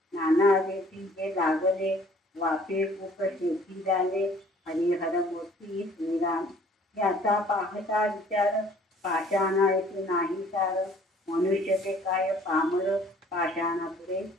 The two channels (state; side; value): normal; both; correlation 0.55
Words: नाना रेती जे लागले वाफे खूप शेती झाले हरिहर मोती. श्रीराम याचा पाहता विचार पाषाण ऐकू नाही सार मनुष्य ते काय पामर पाषाणापुढे.